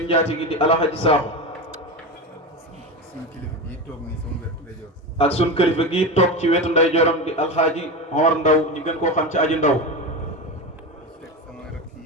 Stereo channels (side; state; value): both; normal; correlation 0.22